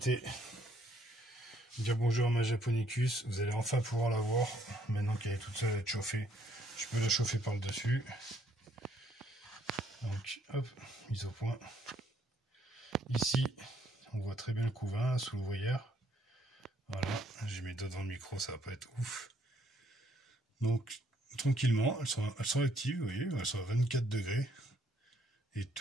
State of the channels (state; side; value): normal; both; correlation 0.67